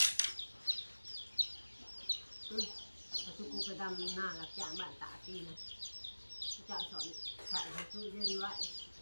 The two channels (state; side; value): inverted; both; correlation -1.00